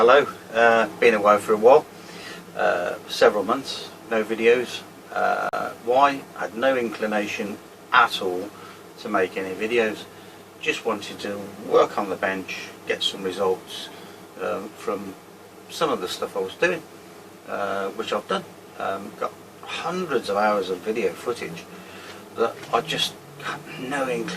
Been away for a while, several months, no videos. Why? Had no inclination at all to make any videos. Just wanted to work on the bench, get some results from some of the stuff I was doing, which I've done. Got hundreds of hours of video footage that I just had no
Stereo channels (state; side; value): identical; both; correlation 1.00